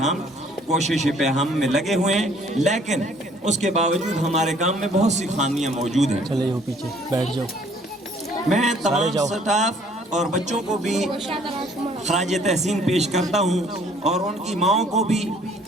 ہم کوشش پہ ہم میں لگے ہوئے ہیں، لیکن اس کے باوجود ہمارے کام میں بہت سی خامیاں موجود ہیں۔ چلے جاؤ پیچھے بیٹھ جاؤ۔ میں تمام سٹاف اور بچوں کو بھی خراج تحسین پیش کرتا ہوں، اور ان کی ماؤں کو بھی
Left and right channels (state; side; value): normal; both; correlation 0.59